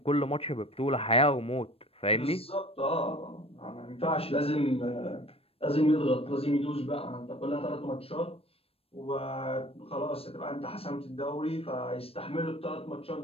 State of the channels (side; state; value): right; late; 0.28 ms